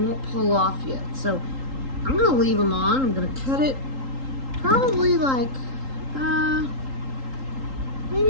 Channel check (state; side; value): late; left; 3.8 ms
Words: pull off yet. So I'm going to leave them on. I'm going to cut it probably like